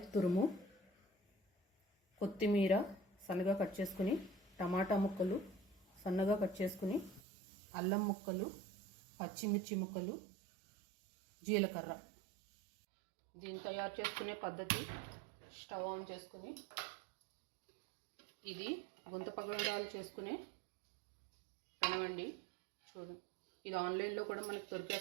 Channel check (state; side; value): drops out; left; at 7.2 s